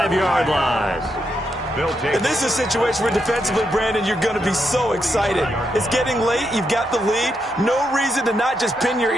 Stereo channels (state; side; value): normal; both; correlation 0.82